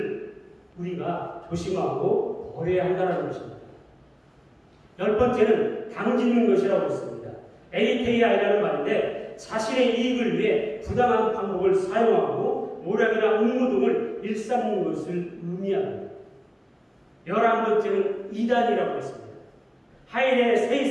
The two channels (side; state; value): both; identical; correlation 1.00